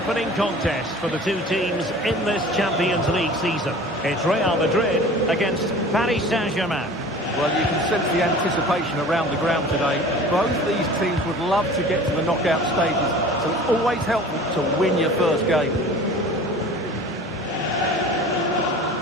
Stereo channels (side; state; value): both; normal; correlation 0.42